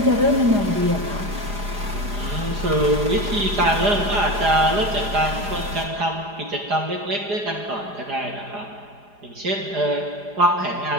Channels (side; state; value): left; late; 4.9 ms